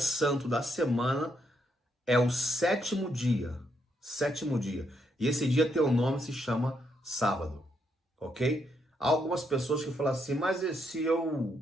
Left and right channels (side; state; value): both; normal; correlation 0.77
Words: da semana é o sétimo dia. Sétimo dia. E esse dia tem o nome, se chama sábado. Ok? Há algumas pessoas que falam assim, mas se